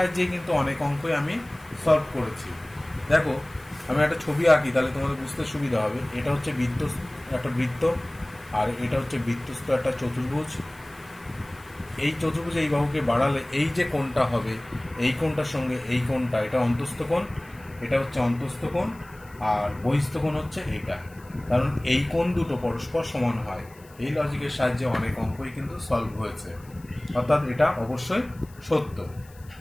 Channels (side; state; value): left; noise; hiss, 26 dB below the sound